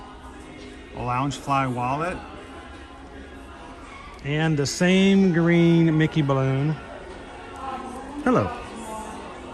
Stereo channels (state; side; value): identical; both; correlation 1.00